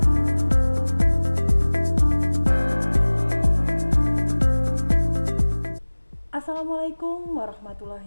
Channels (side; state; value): both; inverted; correlation -1.00